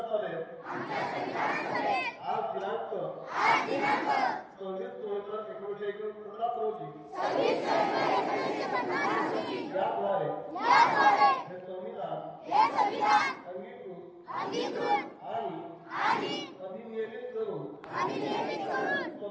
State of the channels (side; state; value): both; identical; correlation 1.00